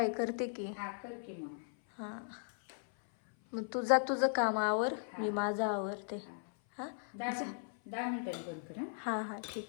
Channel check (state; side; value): silent; right; 53 dB below the other